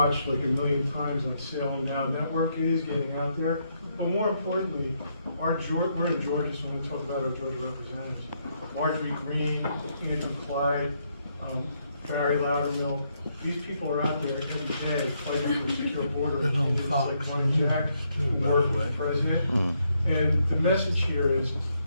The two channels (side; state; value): both; inverted; correlation -0.76